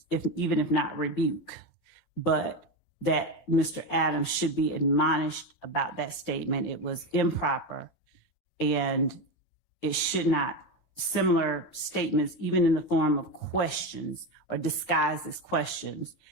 even if not rebuke, but that Mr. Adams should be admonished about that statement. It was improper, and it should not, similar statements, even in the form of questions or disguised as questions,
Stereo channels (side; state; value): right; late; 11 ms